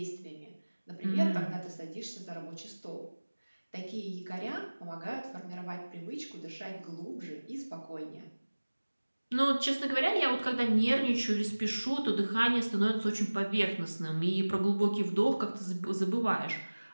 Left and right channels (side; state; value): both; inverted; correlation -1.00